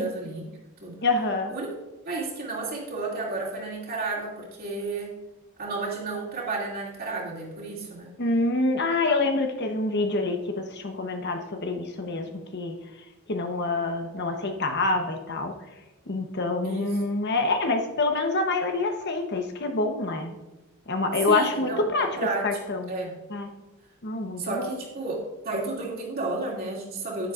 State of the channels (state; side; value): normal; both; correlation 0.05